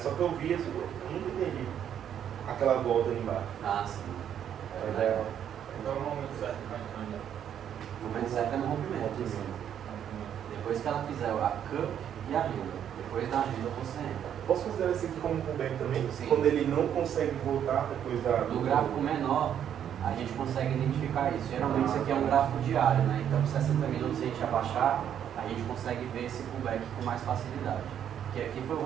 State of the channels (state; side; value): quieter; left; 9.4 dB